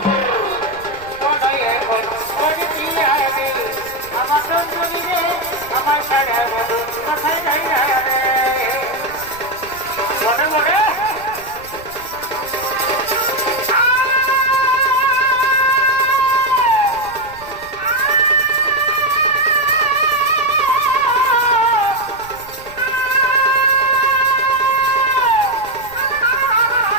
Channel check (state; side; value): noise; right; rumble, 22 dB below the sound